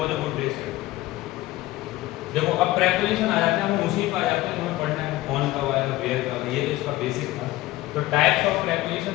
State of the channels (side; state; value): right; quieter; 17.4 dB